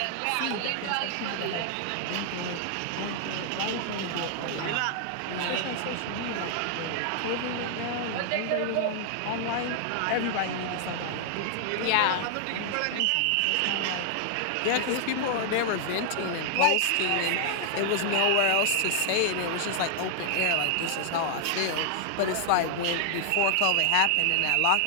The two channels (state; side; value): different; both; correlation 0.00